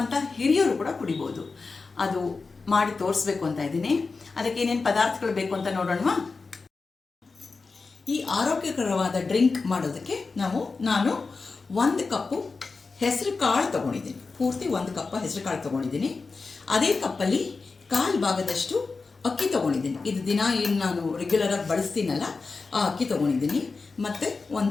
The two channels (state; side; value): quieter; right; 4.2 dB